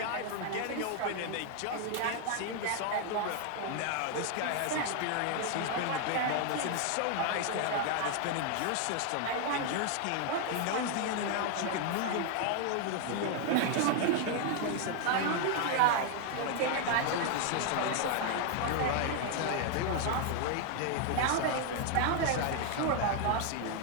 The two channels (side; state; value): both; different; correlation 0.00